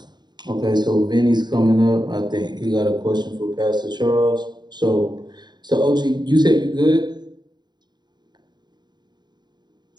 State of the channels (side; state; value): left; late; 0.21 ms